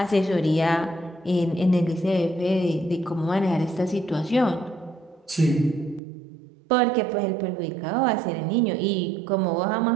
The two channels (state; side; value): drops out; left; at 6.0 s